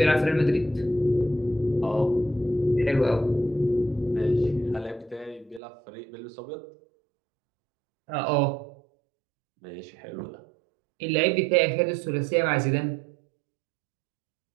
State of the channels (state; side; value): drops out; left; at 5.6 s